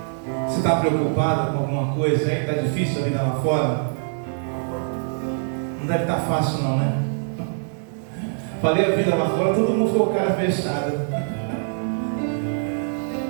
Você está preocupado com alguma coisa aí? Está difícil a vida lá fora? Não deve estar fácil não, né? Falei a vida lá fora, todo mundo ficou com a cara fechada.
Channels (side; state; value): left; silent; digital silence